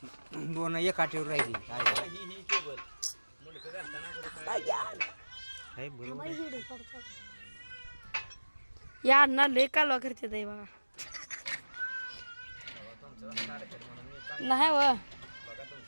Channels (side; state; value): both; inverted; correlation -1.00